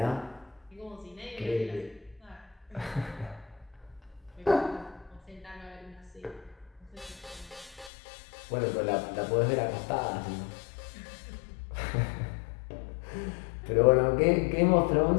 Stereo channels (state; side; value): drops out; right; at 7.9 s